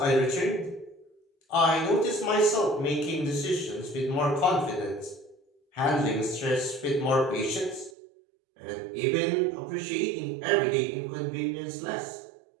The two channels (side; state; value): left; drops out; at 7.9 s